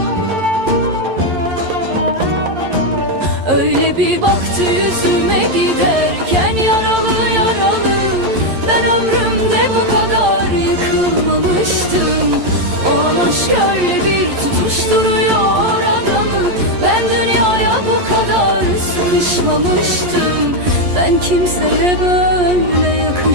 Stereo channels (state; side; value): late; left; 11 ms